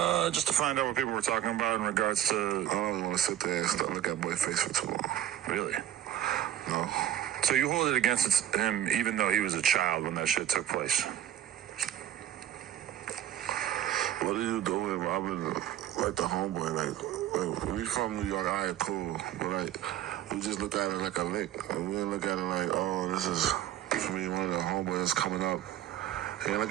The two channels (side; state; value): left; quieter; 11.7 dB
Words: Just to find out what people were talking about in regards to... I don't want to sit there and look at boy face for too long. Really? No. So you hold it against him even though he was a child when that shit took place? What are you doing, Robin? Like the homeboy, like we from New York, all right, cool. But like, we just look at it like a lick. We didn't look at it like, oh, this is, for me, one of the homeboys coming up. He didn't